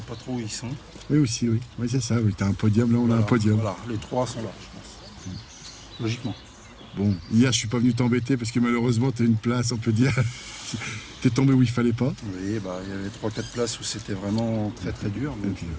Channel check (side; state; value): both; identical; correlation 1.00